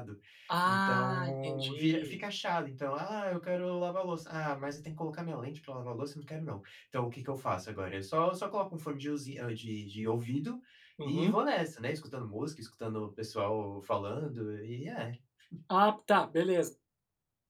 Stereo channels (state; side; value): identical; both; correlation 1.00